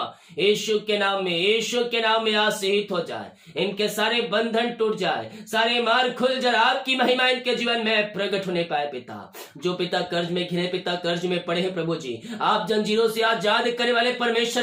यीशु के नाम में, यीशु के नाम में आशीष हो जाए, इनके सारे बंधन टूट जाए, सारे मार्ग खुल जाए, आपकी महिमा इनके जीवन में प्रकट होने पाए पिता। जो पिता कर्ज में घिरे पिता, कर्ज में पड़े हैं प्रभु जी, आप जंजीरों से आजाद करने वाले परमेश्वर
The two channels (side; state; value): both; identical; correlation 1.00